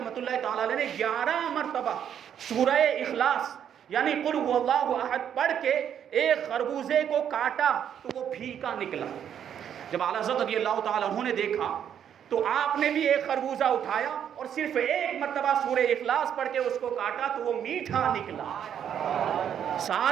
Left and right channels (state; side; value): quieter; left; 9.1 dB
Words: اللہ تعالیٰ علیہ نے 11 مرتبہ سورہ اخلاص یعنی قل هو اللہ احد پڑھ کے ایک خربوزے کو کاٹا تو وہ پھیکا نکلا۔ جب اعلیٰ حضرت رضی اللہ تعالیٰ عنہ نے دیکھا تو آپ نے بھی ایک خربوزہ اٹھایا اور صرف ایک مرتبہ سورہ اخلاص پڑھ کے اس کو کاٹا تو وہ میٹھا نکلا۔